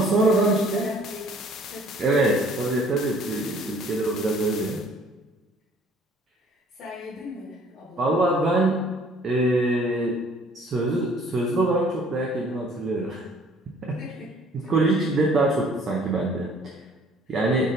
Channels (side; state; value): both; normal; correlation 0.56